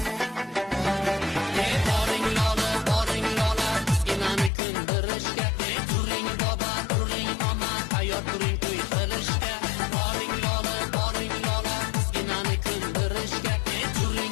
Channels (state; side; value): drops out; right; at 4.5 s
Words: Boring lola, boring lola, bizginani kundirishga. Turing boba, turing mama, tayyor turing to'y qilishga. Boring lola, boring lola, bizginani kundirishga.